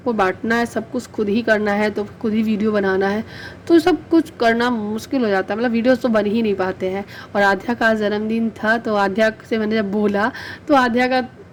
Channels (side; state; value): both; identical; correlation 1.00